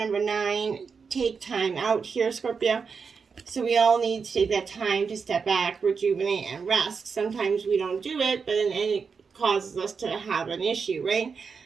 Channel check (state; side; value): quieter; left; 5.5 dB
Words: 9. Take time out here, Scorpio. So we all need to take that time to step back, rejuvenate, and rest. Sometimes we don't do it, but then it causes us to have an issue, right?